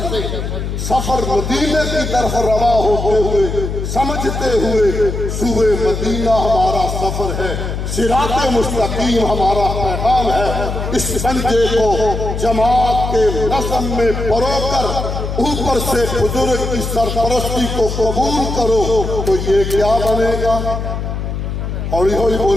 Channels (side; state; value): left; noise; hum, 4 dB below the sound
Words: سے سفر مدینے کی طرف رواں ہوتے ہوئے سمجھتے ہوئے صوبے مدینہ ہمارا سفر ہے، صراط مستقیم ہمارا پیغام ہے، اس سنجے کو جماعت کے نظم میں پرو کر اوپر سے بزرگ کی سرپرستی کو قبول کرو تو یہ کیا بنے گا؟ ہولی ہولی